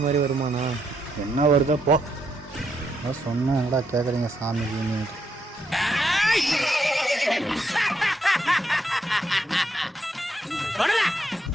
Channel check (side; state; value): both; normal; correlation 0.77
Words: மாதிரி வருமானா? என்ன வருதோ போ. அதான் சொன்னேன், என்னடா கேட்குறீங்க சாமிக்கு?